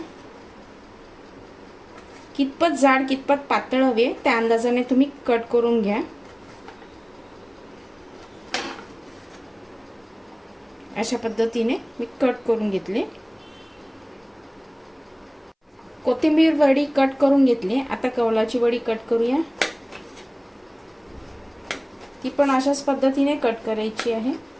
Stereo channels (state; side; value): identical; both; correlation 1.00